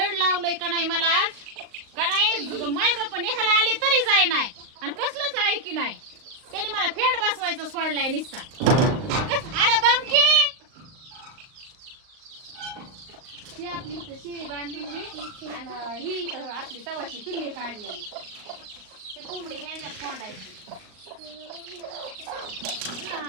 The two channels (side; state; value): left; late; 38 ms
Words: लावलंय का नाही मला का नाही. माय बाप ह्याला आले तरी जाय नाही आणि कसलंच ऐकी नाही. त्यांनी मला फेड बसवायचं सोडलाय निस्ता. अरे दमकी ही आपली इथं शेळी बांधली आणि ही इथं आपली तवाची पिल्ली काढलेली. ते कोंबडी ह्याच्यात कोंडायची.